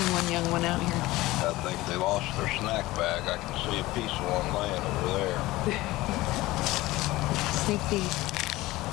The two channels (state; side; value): quieter; right; 18.5 dB